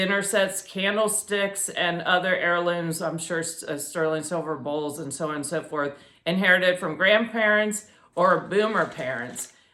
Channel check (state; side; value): identical; both; correlation 1.00